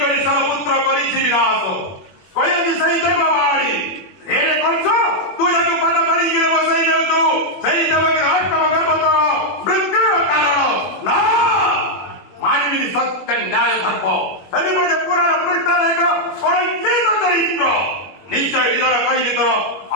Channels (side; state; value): right; late; 21 ms